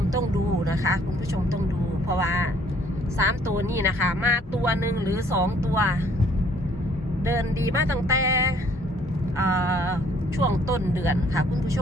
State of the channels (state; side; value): normal; both; correlation 0.61